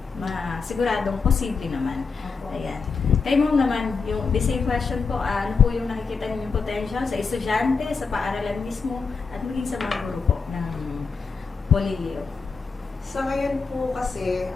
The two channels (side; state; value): right; quieter; 4.9 dB